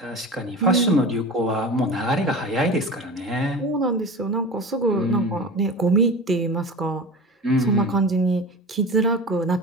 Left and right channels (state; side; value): normal; both; correlation 0.32